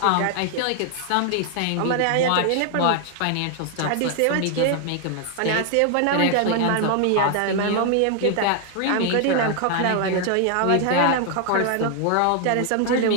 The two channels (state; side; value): different; both; correlation 0.00